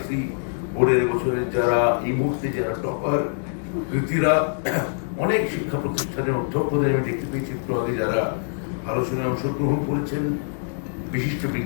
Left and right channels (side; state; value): right; silent; digital silence